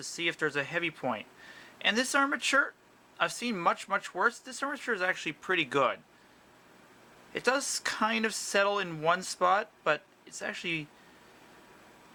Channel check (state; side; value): identical; both; correlation 1.00